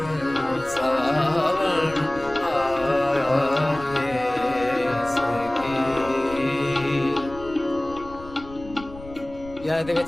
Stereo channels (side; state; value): left; noise; rumble, 18 dB below the sound